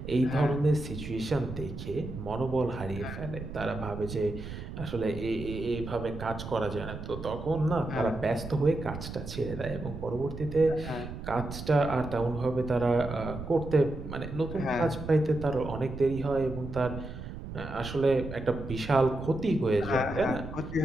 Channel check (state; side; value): noise; right; rumble, 9 dB below the sound